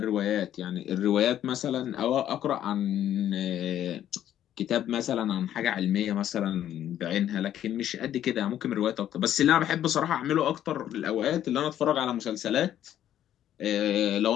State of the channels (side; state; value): right; quieter; 11.3 dB